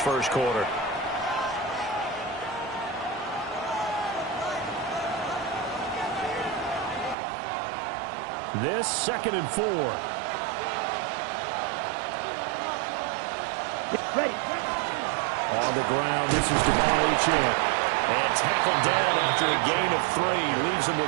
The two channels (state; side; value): drops out; left; at 7.2 s